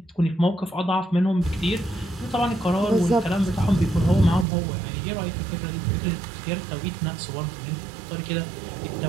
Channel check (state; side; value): drops out; left; at 4.5 s